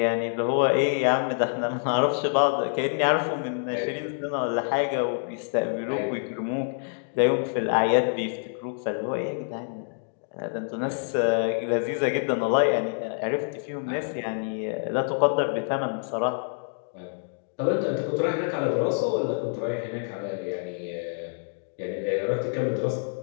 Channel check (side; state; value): right; silent; digital silence